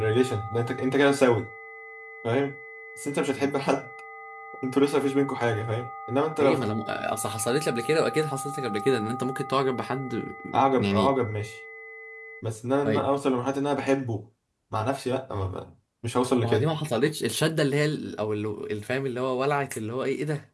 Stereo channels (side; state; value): both; identical; correlation 1.00